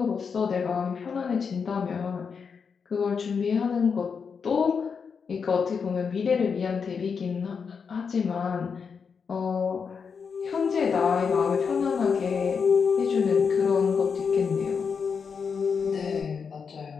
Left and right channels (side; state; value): right; quieter; 6.0 dB